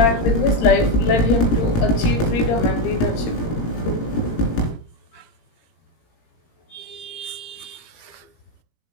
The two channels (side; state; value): right; late; 17 ms